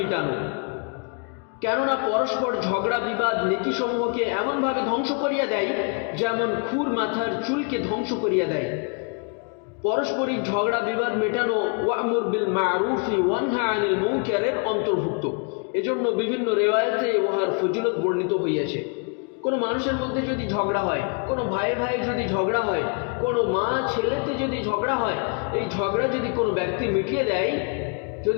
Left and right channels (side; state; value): right; quieter; 37.3 dB